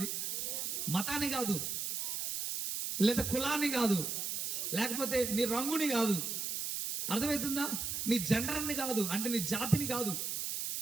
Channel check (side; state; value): right; noise; hiss, 2 dB below the sound